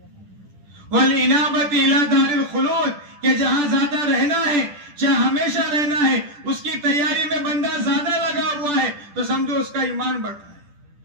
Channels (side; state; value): left; late; 10 ms